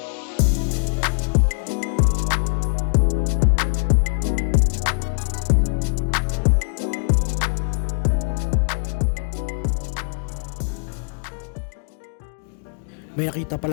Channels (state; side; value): silent; right; 64 dB below the other